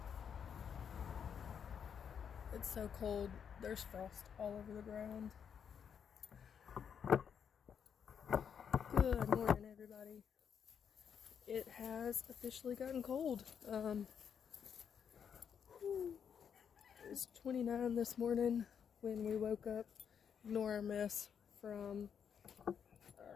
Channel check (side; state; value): right; quieter; 7.5 dB